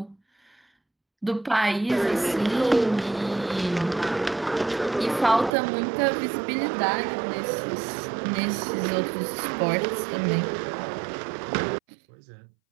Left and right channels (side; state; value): left; drops out; at 5.5 s